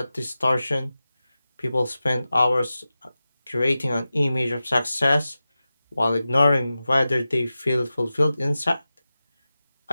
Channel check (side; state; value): both; inverted; correlation -0.94